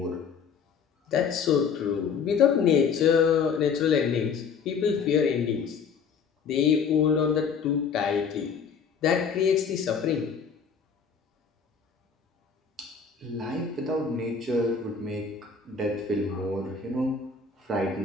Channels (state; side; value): quieter; right; 6.0 dB